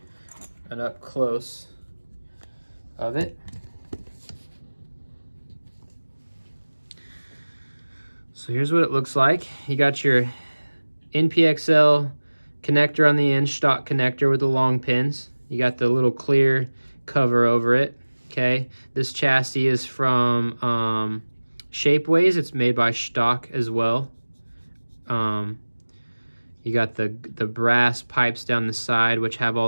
an up close of it. So here's what it looks like. You got your NPXL connector on the end, Shtok connector with the long pins. You got the little clear cover over it. Okay, this chassis is from Shapeways. It's made by Shtok as well. You got the brass pipes down the side, which have all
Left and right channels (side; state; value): both; inverted; correlation -1.00